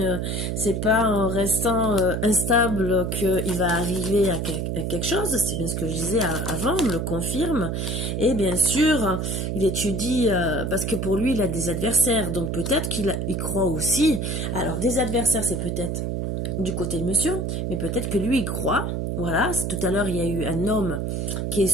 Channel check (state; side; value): noise; right; hum, 1 dB below the sound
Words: c'est pas en restant instable qu'il va arriver à quelque chose. C'est bien ce que je disais avant, on me le confirme. Et bien sûr, il étudie parce que pour lui, il a des adversaires. Donc peut-être qu'il croit aussi. Alors, des adversaires, c'est peut-être du côté de monsieur, mais peut-être que lui, il croit. Voilà, tout à l'heure, il y a eu un homme qui est